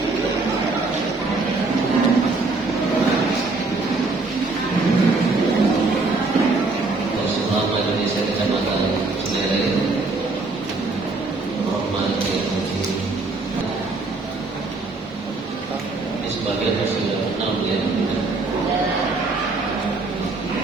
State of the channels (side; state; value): left; quieter; 3.6 dB